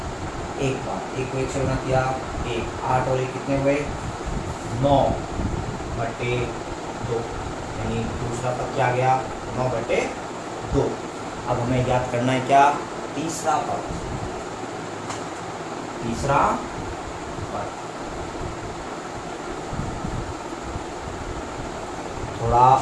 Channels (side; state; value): both; identical; correlation 1.00